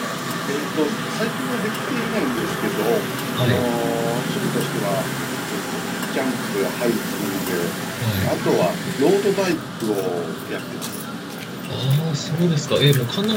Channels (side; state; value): both; identical; correlation 1.00